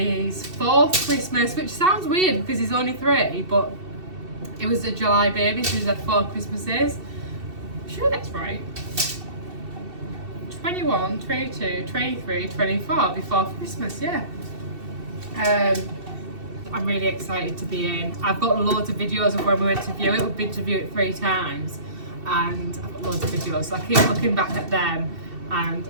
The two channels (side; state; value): left; late; 2.7 ms